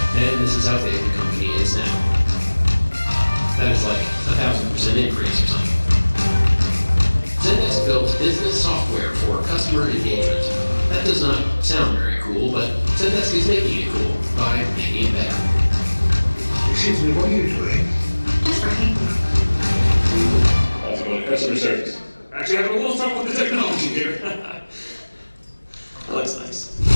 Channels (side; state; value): both; inverted; correlation -1.00